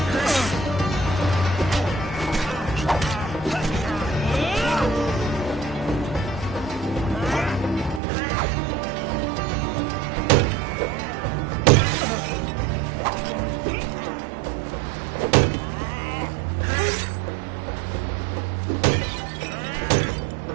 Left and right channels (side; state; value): left; drops out; at 8.0 s